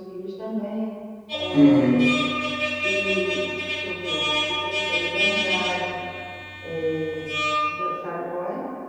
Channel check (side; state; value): both; identical; correlation 1.00